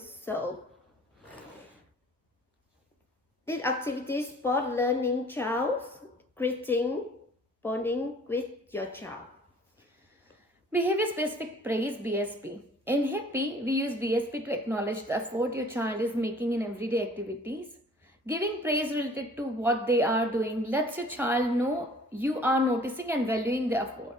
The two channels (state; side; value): normal; both; correlation 0.52